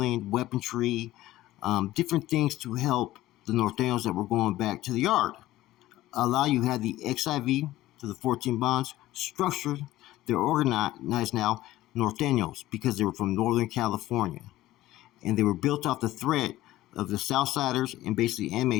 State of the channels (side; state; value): right; quieter; 15.8 dB